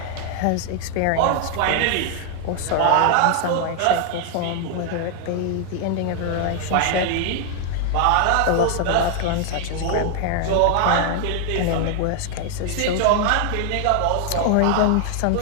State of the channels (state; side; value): different; both; correlation 0.00